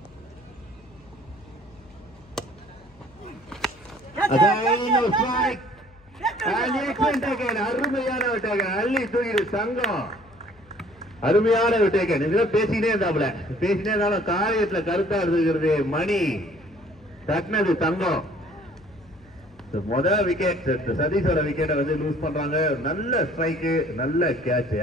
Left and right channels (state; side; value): noise; left; hum, 28 dB below the sound